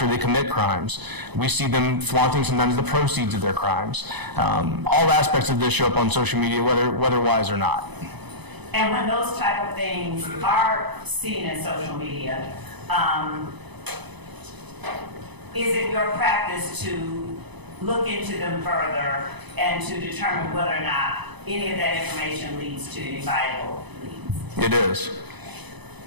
they commit crimes. We see them flaunting sometimes the proceeds of their crimes. All aspects of this show up on social media, whether wise or not. And when those type of things are seen in social media, is it your practice to look into them further and to determine whether or not any of that information leads to any viable leads? It is.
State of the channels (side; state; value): left; late; 0.99 ms